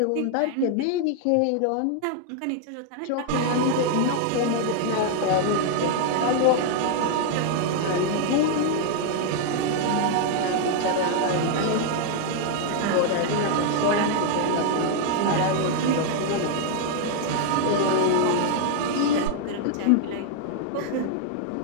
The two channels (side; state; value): both; different; correlation 0.00